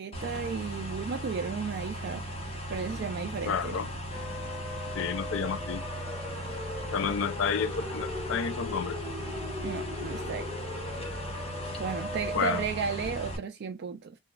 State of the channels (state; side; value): normal; both; correlation 0.20